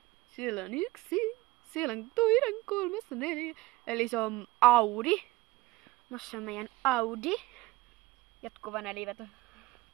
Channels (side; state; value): left; quieter; 19.6 dB